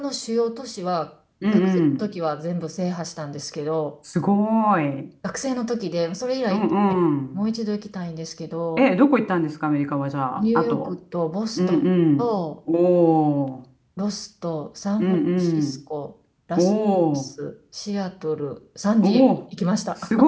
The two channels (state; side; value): identical; both; correlation 1.00